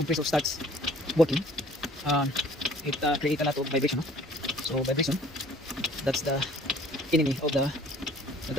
starts working, it creates a lot of vibration. No? So vibration, that's the enemy of the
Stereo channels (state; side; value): normal; both; correlation 0.54